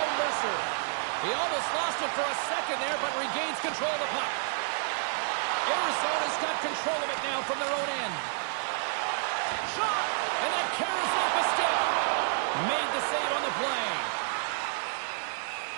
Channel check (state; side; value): silent; left; 58 dB below the other